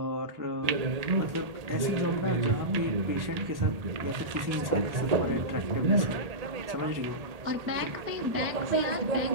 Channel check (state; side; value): late; left; 1.7 ms